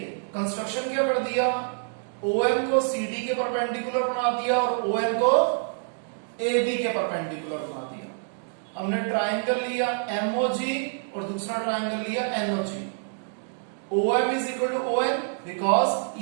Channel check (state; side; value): silent; left; 60 dB below the other